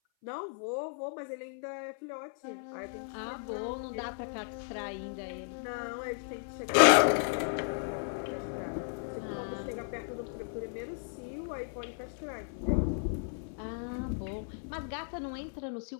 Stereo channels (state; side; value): silent; right; 55 dB below the other